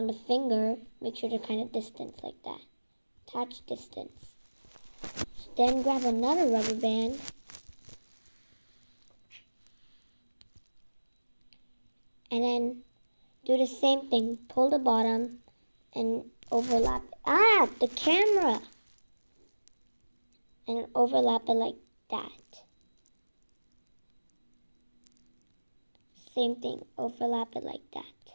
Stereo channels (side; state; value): both; inverted; correlation -1.00